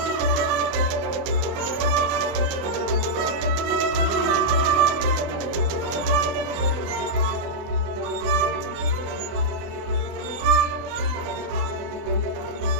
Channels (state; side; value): late; left; 24 ms